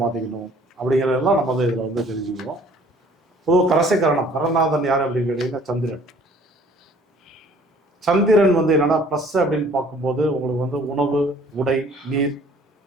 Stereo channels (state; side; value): normal; both; correlation 0.55